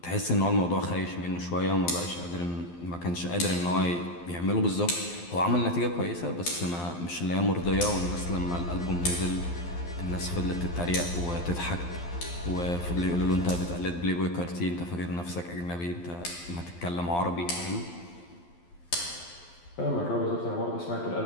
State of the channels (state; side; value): late; right; 12 ms